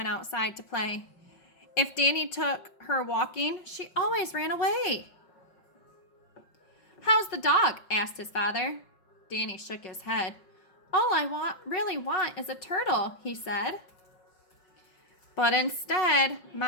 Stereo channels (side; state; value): right; late; 5.5 ms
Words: outside to play. If Danny took her walking, she always ran away. How's the dog? Asked his father. Danny shook his head. All I really want is a turtle, he said. But instead,